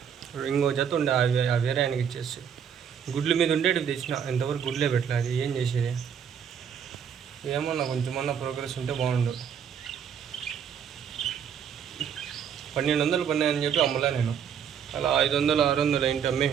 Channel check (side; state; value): left; quieter; 7.9 dB